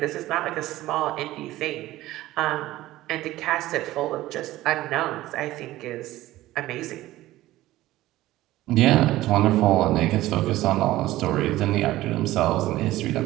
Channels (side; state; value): left; quieter; 16.2 dB